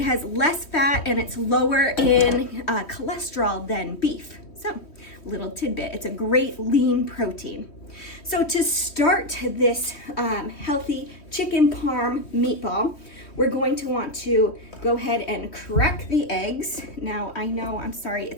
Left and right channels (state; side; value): late; right; 3.1 ms